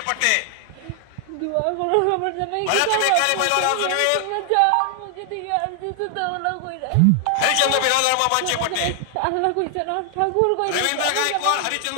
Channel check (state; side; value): different; both; correlation 0.00